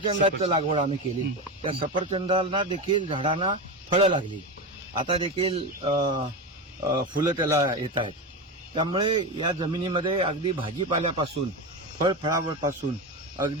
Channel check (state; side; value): normal; both; correlation 0.19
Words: लागवड आम्ही केली. त्या सफरचंदाला देखील झाडांना फळं लागली. आता देखील फुलं त्याला येतात. त्यामुळे या जमिनीमध्ये अगदी भाजीपाल्यापासून फळावळपासून